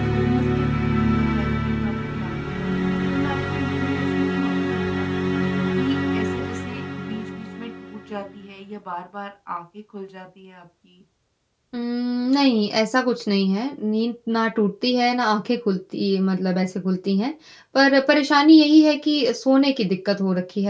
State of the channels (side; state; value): both; identical; correlation 1.00